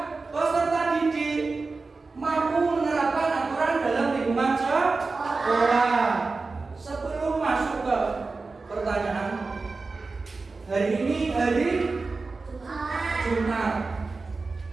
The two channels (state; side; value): quieter; left; 3.9 dB